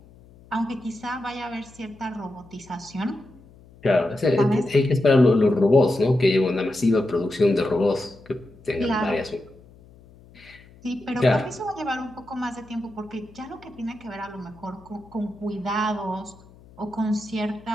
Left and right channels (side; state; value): left; noise; hum, 24 dB below the sound